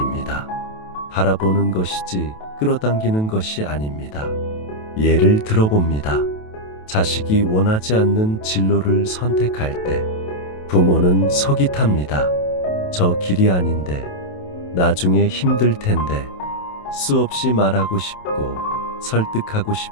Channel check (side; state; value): right; late; 28 ms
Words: 바라보는 것이지 끌어당기는 것이 아닙니다. 예를 들어봅니다. 자식이 원하지 않는 진로를 선택할 때 부모는 속이 탑니다. 저 길이 아닌데, 나중에 힘들 텐데. 수없이 말하고 싶고 설득하고